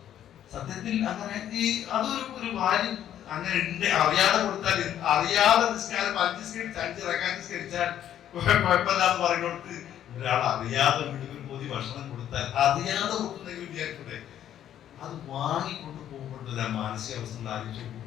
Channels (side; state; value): right; quieter; 10.8 dB